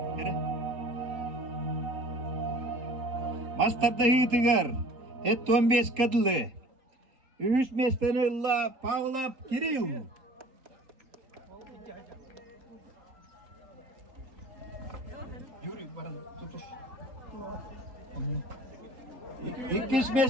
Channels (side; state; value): left; late; 3.8 ms